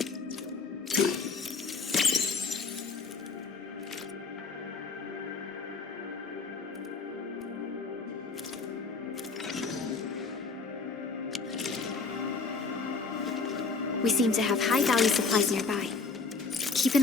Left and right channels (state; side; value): quieter; right; 4.5 dB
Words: We seem to have high-value supplies nearby. Keep